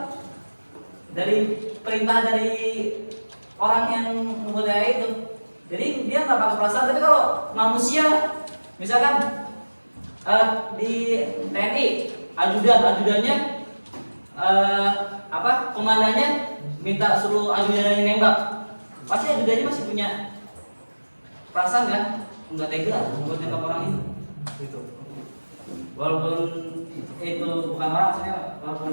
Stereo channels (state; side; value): inverted; both; correlation -1.00